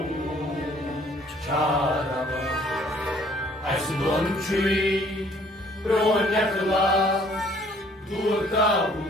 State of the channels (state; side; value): normal; both; correlation 0.59